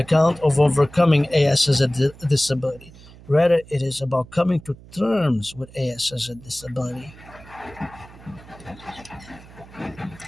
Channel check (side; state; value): right; noise; hum, 21 dB below the sound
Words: of overcoming AS as a disability. Rather, it is about coming to terms with AS as a disability.